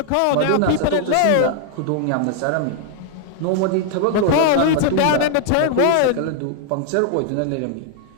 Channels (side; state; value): both; different; correlation 0.00